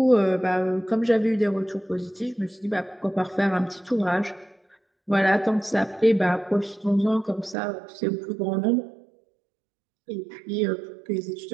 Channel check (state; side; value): drops out; left; at 7.6 s